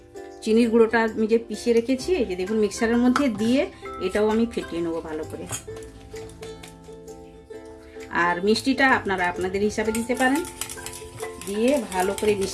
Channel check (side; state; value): both; identical; correlation 1.00